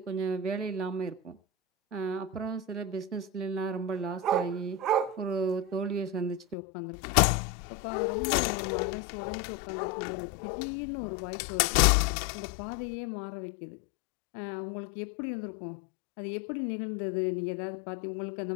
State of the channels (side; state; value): right; drops out; at 6.6 s